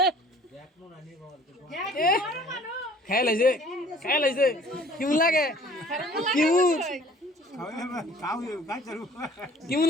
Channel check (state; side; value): normal; both; correlation 0.53